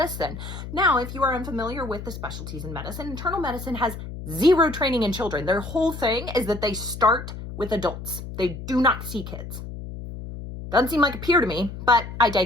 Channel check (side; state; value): left; noise; hum, 10 dB below the sound